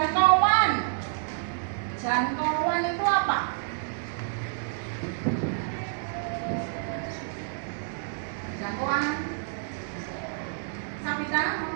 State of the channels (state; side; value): silent; left; digital silence